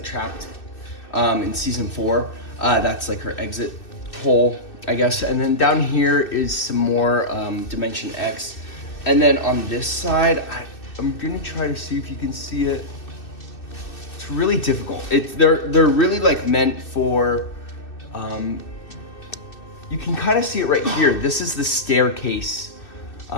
trapped in season 4. That's like her exit hole, I guess. And then down here is some more Dimension X. And then on this side, I'm gonna try to see if you can see it. It's really difficult. They're really like meant for, you can kind of see it right here. This is the staircase.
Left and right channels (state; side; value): late; right; 2.6 ms